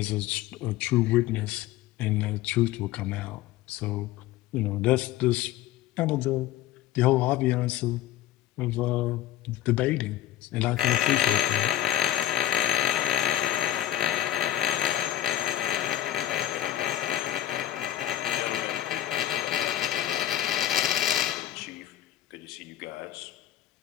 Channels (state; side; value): quieter; right; 12.9 dB